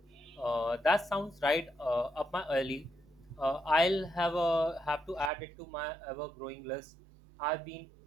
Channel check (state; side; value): drops out; left; at 5.3 s